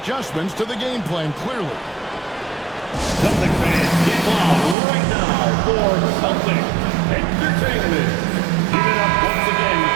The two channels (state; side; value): drops out; left; at 4.8 s